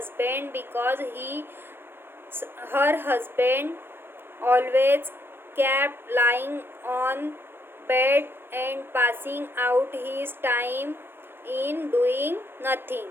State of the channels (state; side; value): late; left; 0.10 ms